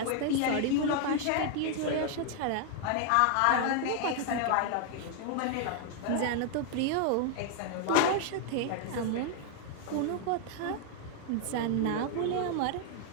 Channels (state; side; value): different; both; correlation 0.00